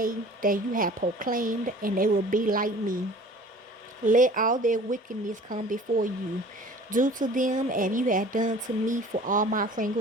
that you have proclaimed, and they will be like me. Let all their wickedness come before you. Do to them as you have done to me for all my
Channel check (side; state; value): both; normal; correlation 0.46